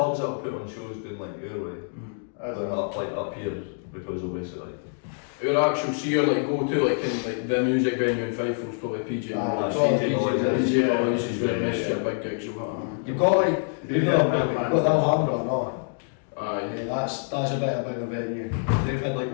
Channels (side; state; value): right; silent; digital silence